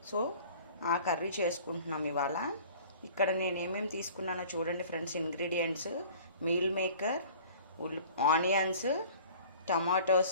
సో ఆ కర్రీ చేసుకుంటున్నాం ఇవాళ. ఇక్కడ నేను ఏమేమి తీసుకున్నానో చూడండి friends. Ingredients: meal maker, onions,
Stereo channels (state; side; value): inverted; both; correlation -0.48